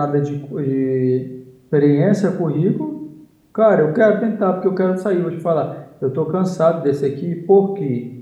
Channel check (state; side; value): identical; both; correlation 1.00